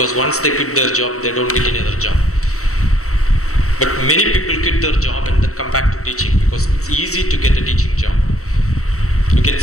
once they quit their job, they don't get any other job. But many people quit their job and then come back to teaching because it's easy to get a teaching job. You can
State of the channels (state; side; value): late; right; 0.64 ms